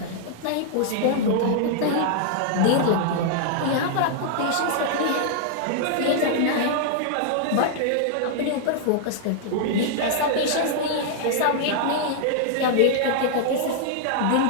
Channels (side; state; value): both; different; correlation -0.01